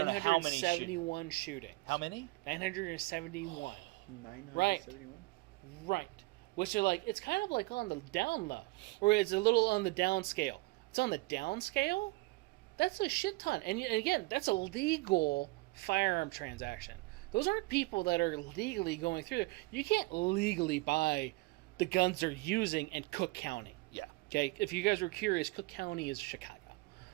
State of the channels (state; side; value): quieter; left; 23.1 dB